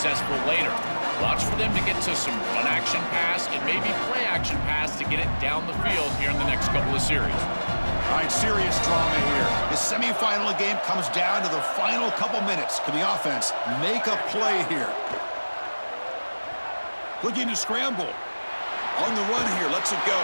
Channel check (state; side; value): inverted; both; correlation -1.00